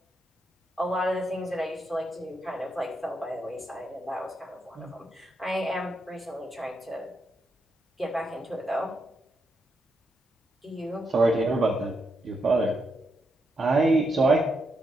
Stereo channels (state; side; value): normal; both; correlation 0.82